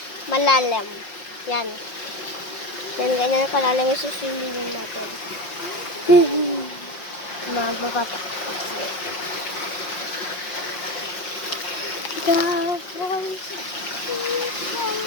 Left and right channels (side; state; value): right; late; 5.6 ms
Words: malalim. Yan. Yan, ganyan kalalim yung swimming natin. Magbabata.